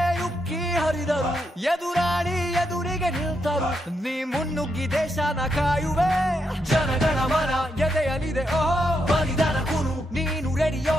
ಉಕ್ಕಿ ಹರಿದರು ಎದುರಾಳಿ ಎದುರಿಗೆ ನಿಲ್ತರು ನೀ ಮುನ್ನುಗ್ಗಿ ದೇಶನ ಕಾಯುವೆ ಜನಗಣ ಮನ ಎದೆಯಲಿದೆ ಓಹೋ ಬಲಿದಾನ ಕುರು ನೀನು ರೆಡಿಯೋ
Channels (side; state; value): both; normal; correlation 0.81